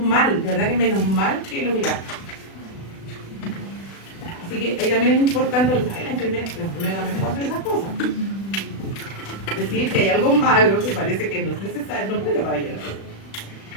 de verdad que menos mal que lo miramos. Así que ahí también es importante, la enfermedad también puede hacer esas cosas. Decir que hay algo malo que parece que no es necesario, no puede pabellón.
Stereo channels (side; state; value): right; late; 36 ms